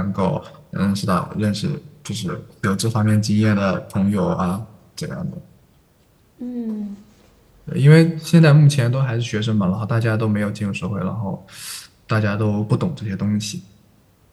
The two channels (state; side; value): identical; both; correlation 1.00